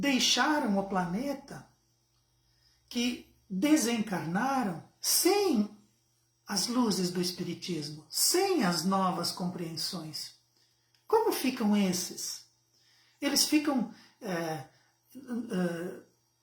o planeta, que desencarnaram sem as luzes do Espiritismo, sem as novas compreensões? Como ficam esses? Eles ficam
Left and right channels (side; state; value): both; identical; correlation 1.00